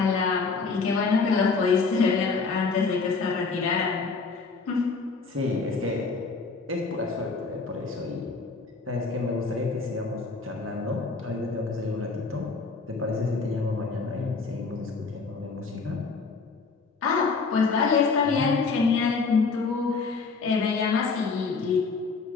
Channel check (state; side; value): quieter; right; 4.5 dB